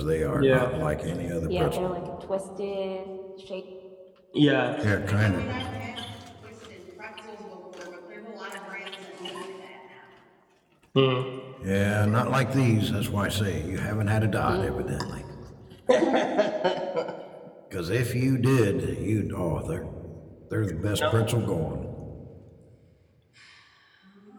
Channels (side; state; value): both; identical; correlation 1.00